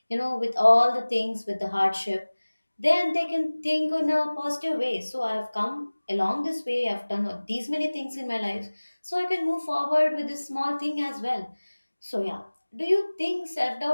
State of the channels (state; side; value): inverted; both; correlation -1.00